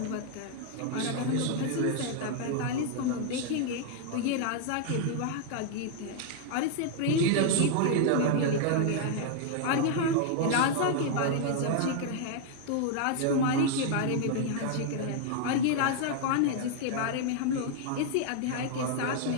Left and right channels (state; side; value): different; both; correlation 0.00